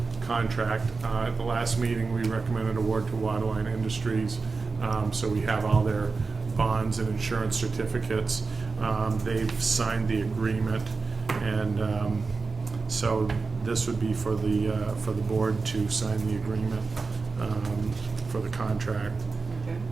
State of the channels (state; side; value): quieter; left; 4.3 dB